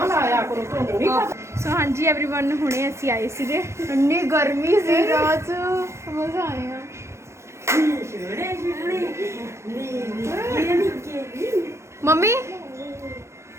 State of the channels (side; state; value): left; late; 0.13 ms